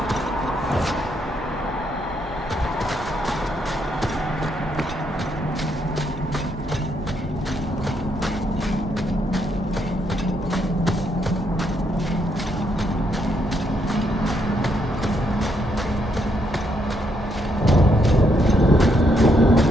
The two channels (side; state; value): both; normal; correlation 0.75